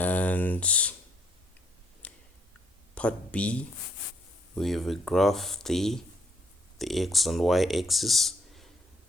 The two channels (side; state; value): both; normal; correlation 0.69